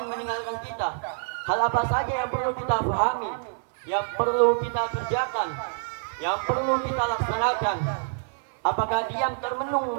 meninggalkan kita, hal apa saja yang perlu kita pahami, yang perlu kita kerjakan, yang perlu kita laksanakan? Apakah diam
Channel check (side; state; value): left; silent; 60 dB below the other